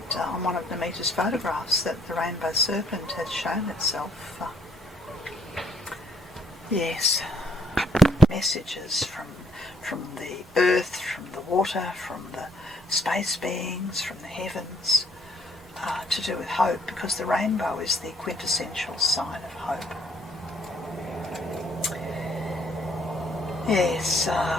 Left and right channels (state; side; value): normal; both; correlation 0.66